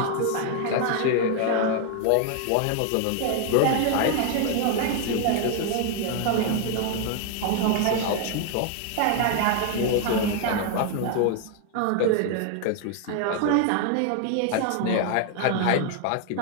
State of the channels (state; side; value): different; both; correlation 0.00